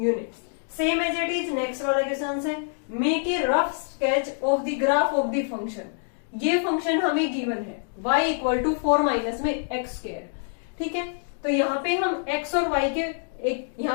Same as it is next वाला क्वेश्चन है, make a rough sketch of the graph of the function. ये function हमें गिवन है y इक्वल टू 4 माइनस में एक्स स्क्वायर। ठीक है, तो यहाँ पे हम x और y के एक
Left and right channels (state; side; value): silent; right; digital silence